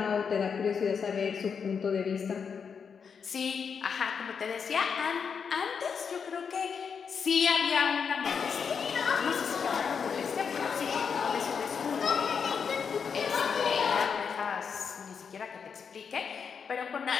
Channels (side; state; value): right; quieter; 6.4 dB